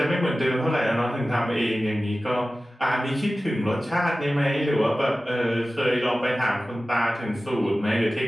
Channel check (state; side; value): normal; both; correlation 0.96